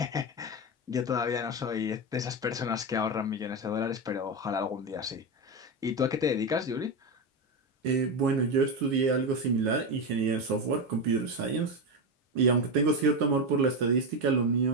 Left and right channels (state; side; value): normal; both; correlation 0.13